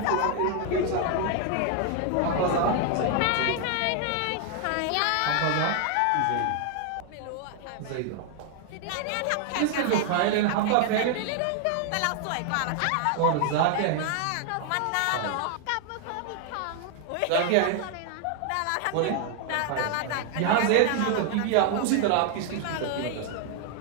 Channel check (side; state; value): both; different; correlation 0.00